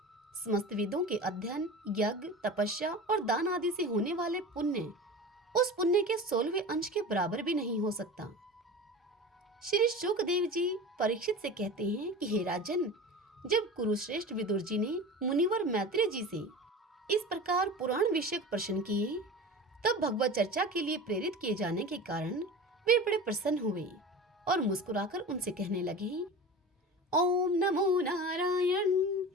समस्त वेदों के अध्ययन, यज्ञ, तपस्या और दान आदि से होने वाले पुण्य उस पुण्य के 16वें अंश के बराबर भी नहीं हो सकता। श्री शुकदेव जी परीक्षित से कहते हैं कि हे राजन, जब कुरुश्रेष्ठ विदुर जी ने मुनिवर मैत्रेय जी से इस प्रकार पुराण विषयक प्रश्न किए, तब भगवत चर्चा के लिए प्रेरित किए जाने के कारण वे बड़े प्रसन्न हुए और मुस्कुराकर उनसे कहने लगे, ओम नमो नारायण,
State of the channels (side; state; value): both; normal; correlation 0.33